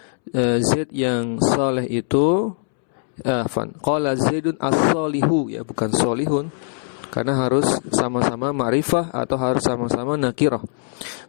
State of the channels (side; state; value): right; silent; 65 dB below the other